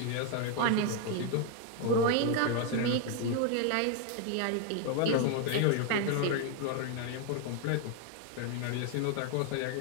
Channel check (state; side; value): different; both; correlation 0.01